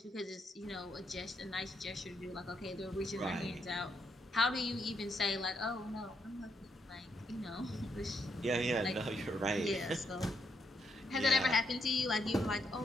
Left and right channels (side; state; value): both; normal; correlation 0.77